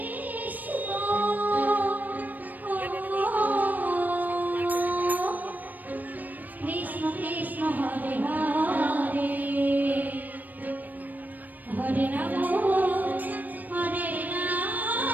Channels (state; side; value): late; left; 0.084 ms